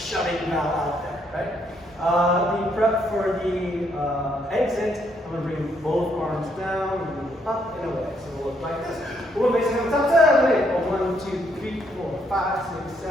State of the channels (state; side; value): normal; both; correlation 0.72